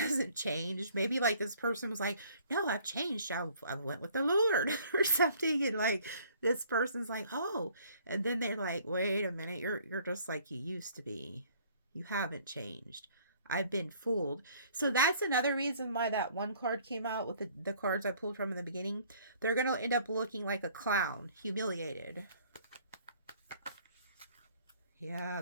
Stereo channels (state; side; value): inverted; both; correlation -0.58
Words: changed. Maybe like this person was like, no, I've changed. I went with the Lord or something. And like this person's like, oh. And then they're like, wait a minute. You're just like you used to be. You haven't changed. I've been fooled. So that's another reason why that one card came out with the cards I pulled from in the beginning. They're going to end up looking like a clown, humiliated. Yeah,